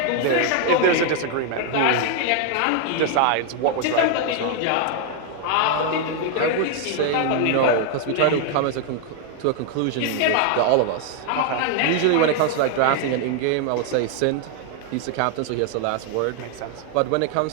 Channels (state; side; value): different; both; correlation 0.00